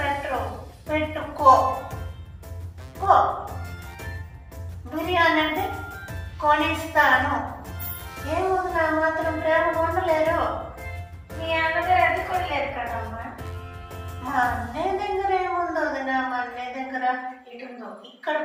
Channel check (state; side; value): identical; both; correlation 1.00